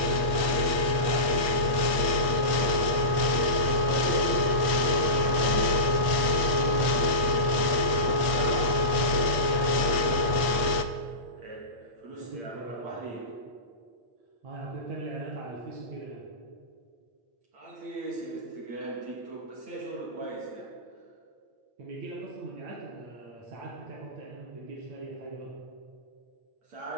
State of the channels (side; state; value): left; late; 8.3 ms